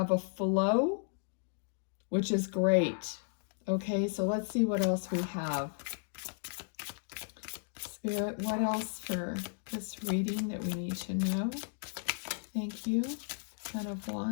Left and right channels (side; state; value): right; silent; digital silence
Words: a flow, which is great. Okay, so let's see what else we have. Spirit, what else for this reading that we need to know? Thank you. Ten of